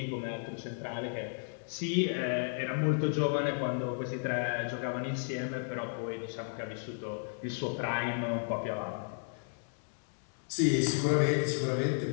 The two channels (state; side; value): silent; right; digital silence